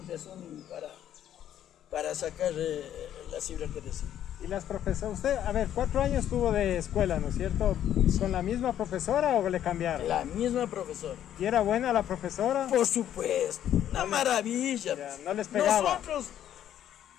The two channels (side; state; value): right; quieter; 10.9 dB